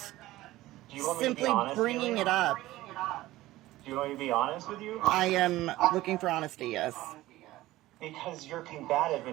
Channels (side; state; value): left; quieter; 16.8 dB